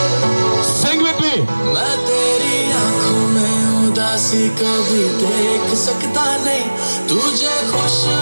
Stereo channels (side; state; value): both; inverted; correlation -1.00